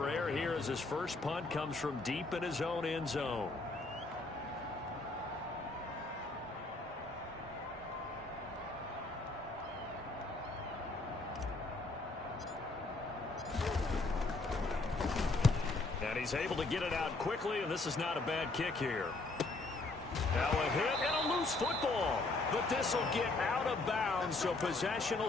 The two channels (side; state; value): right; quieter; 3.2 dB